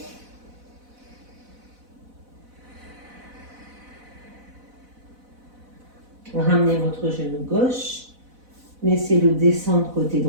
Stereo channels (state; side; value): late; left; 4.0 ms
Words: Ramenez votre genou gauche. Laissez-le descendre côté